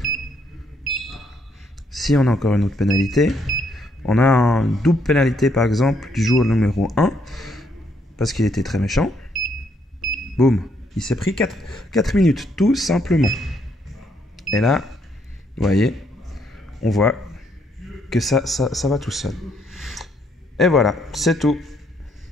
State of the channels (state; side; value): normal; both; correlation 0.72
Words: Si on a encore une autre pénalité, on a une double pénalité par exemple du joueur numéro 1 parce qu'il était très méchant. Boum, il s'est pris 4 minutes tout simplement. Et là, vous voyez, on voit que ça va tout seul. Et voilà, c'est tout.